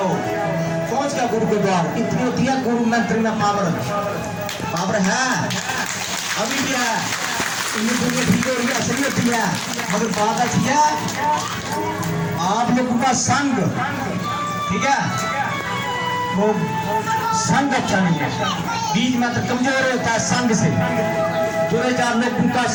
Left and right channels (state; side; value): identical; both; correlation 1.00